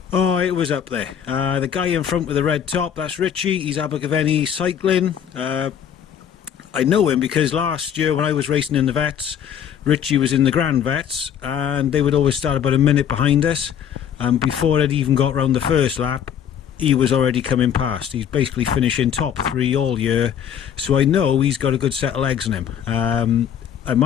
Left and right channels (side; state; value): right; quieter; 8.9 dB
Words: was up there. The guy in front with the red top, that's Richie. He's Abergavenny Cycling. I know him because last year when I was racing in the Vets, Richie was in the Grand Vets, and they would always start about a minute behind us. And before it even got round the first lap, he was already coming past. He's basically finishing top 3 all year, so I know he's got a good set of legs in him. And